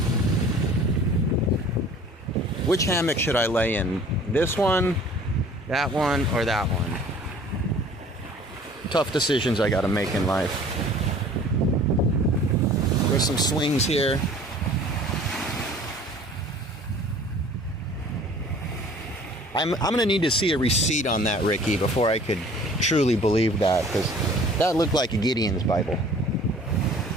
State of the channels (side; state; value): both; normal; correlation 0.49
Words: Which hammock should I lay in? This one, that one, or that one? Tough decisions I gotta make in life. There's some swings here. I'm gonna need to see a receipt on that, Ricky, before I could truly believe that, because that looked like a Gideon's Bible.